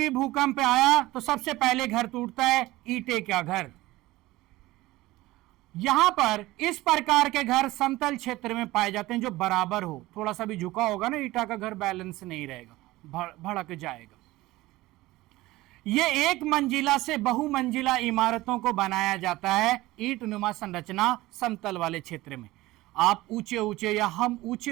भूकंप आया तो सबसे पहले घर टूटता है, ईंटे का घर। यहां पर इस प्रकार के घर समतल क्षेत्र में पाए जाते हैं जो बराबर हो, थोड़ा सा भी झुका होगा ना ईटा का घर बैलेंस नहीं रहेगा, भड़क जाएगा। ये एक मंजिला से बहुमंजिला इमारतों को बनाया जाता है ईंट नुमा संरचना समतल वाले क्षेत्र में। आप ऊंचे ऊंचे या हम ऊंचे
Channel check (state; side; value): quieter; left; 18.4 dB